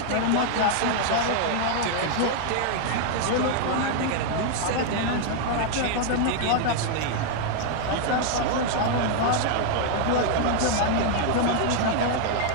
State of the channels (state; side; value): different; both; correlation 0.00